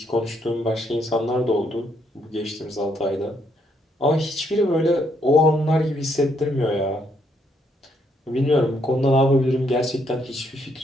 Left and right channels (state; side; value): normal; both; correlation 0.73